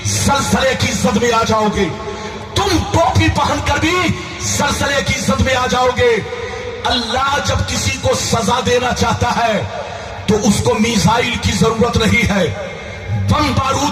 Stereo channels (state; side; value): identical; both; correlation 1.00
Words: सलसले की इज्जत में आ जाओगे, तुम टोपी पहनकर भी सलसले की इज्जत में आ जाओगे। अल्लाह जब किसी को सजा देना चाहता है तो उसको मिसाइल की जरूरत नहीं है, बम